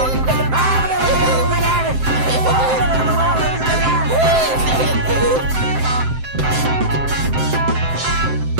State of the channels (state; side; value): late; left; 7.7 ms